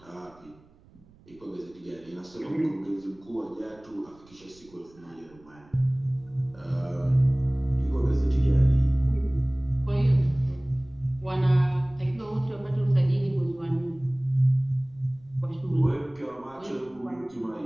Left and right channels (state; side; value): noise; right; rumble, 27 dB below the sound